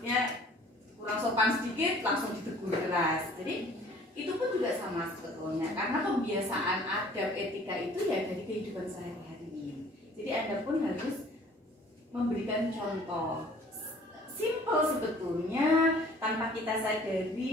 sopan sedikit langsung ditegur keras. Jadi itu pun juga sama sebetulnya karena kebiasaan adab etika itu ya dari kehidupan sehari-hari. Jadi Anda pun harus memberikan contoh simple sebetulnya tanpa kita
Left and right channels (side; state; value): both; normal; correlation 0.53